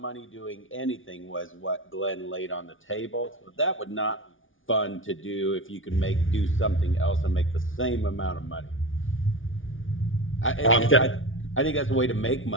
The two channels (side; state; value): right; late; 0.57 ms